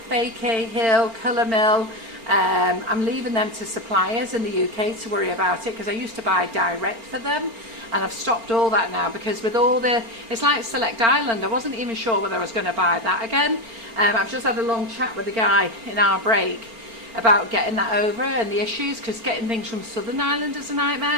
Fakey, Hill, Colour Mill. I'm leaving them to suppliers in the UK to worry about it because I used to buy direct for them and I've stopped all that now because with all the, it's like Select Island, I wasn't even sure whether I was going to buy that again. I've just had a long chat with the guy in our break about getting that over and the issues because getting things from Southern Ireland is a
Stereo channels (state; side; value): late; left; 4.4 ms